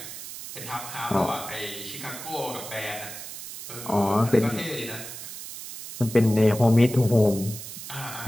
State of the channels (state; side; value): noise; right; hiss, 11 dB below the sound